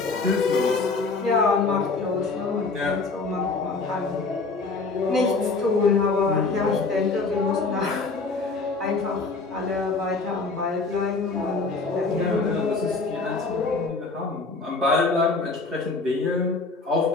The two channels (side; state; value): right; quieter; 4.0 dB